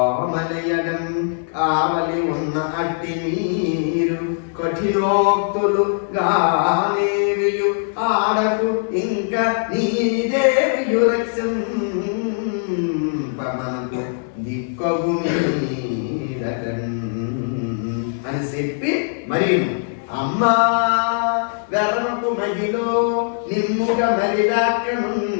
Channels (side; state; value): right; silent; digital silence